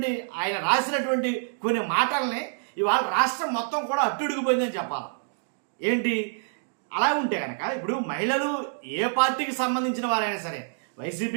రాసినటువంటి కొన్ని మాటల్ని ఇవాళ రాష్ట్రం మొత్తం కూడా అట్టుడిగిపోయిందని చెప్పాలి. ఏంటి అలా ఉంటే కనుక ఇప్పుడు మహిళలు ఏ పార్టీకి సంబంధించిన వారైనా సరే,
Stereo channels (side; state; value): left; silent; digital silence